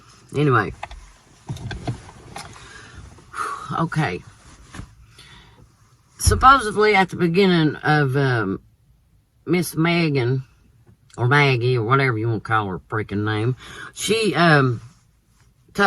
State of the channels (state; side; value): identical; both; correlation 1.00